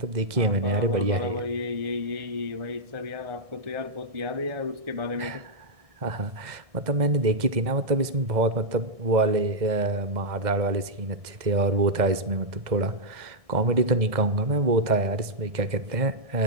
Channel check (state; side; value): late; left; 1.6 ms